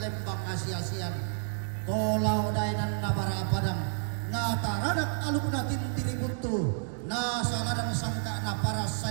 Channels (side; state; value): left; silent; digital silence